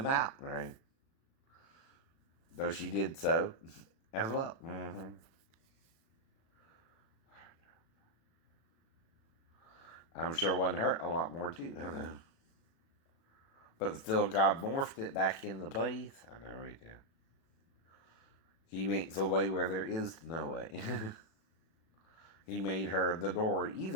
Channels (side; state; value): right; late; 36 ms